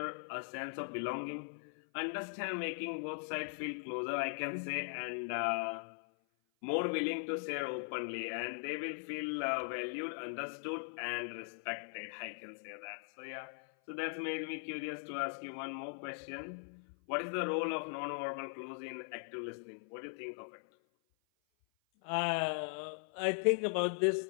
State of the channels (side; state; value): right; silent; 51 dB below the other